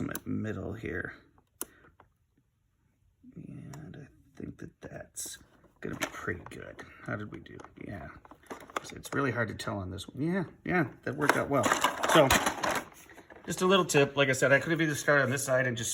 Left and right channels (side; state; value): both; identical; correlation 1.00